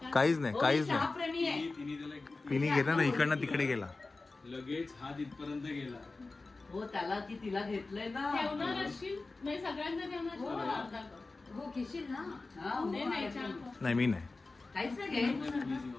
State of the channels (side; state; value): right; quieter; 3.5 dB